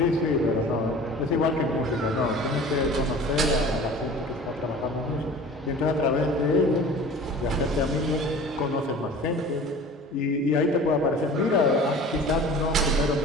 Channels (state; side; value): normal; both; correlation 0.42